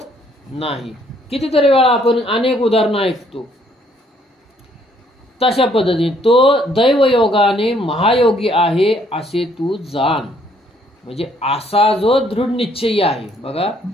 नाही. कितीतरी वेळा आपण अनेक उदाहरणं ऐकतो. तशा पद्धतीने तो दैवयोगाने महायोगी आहे असे तू जाण. म्हणजे असा जो दृढ निश्चयी आहे. बघा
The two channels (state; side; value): normal; both; correlation 0.66